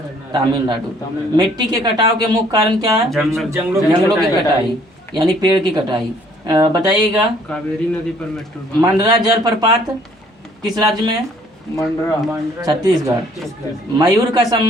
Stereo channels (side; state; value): both; normal; correlation 0.61